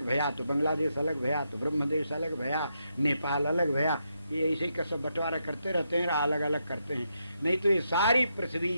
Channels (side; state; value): both; inverted; correlation -0.82